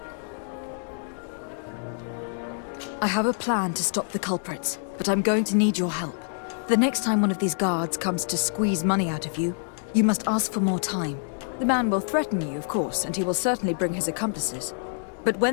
I have a plan to stop the culprits, but I'm going to need your help. The next time one of these guards comes to squeeze money out of you, you must ask for more time. The man will threaten you, of course, and he will certainly bring his accomplices. But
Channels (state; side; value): silent; right; digital silence